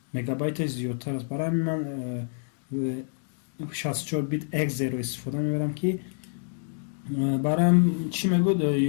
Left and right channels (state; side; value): silent; right; 60 dB below the other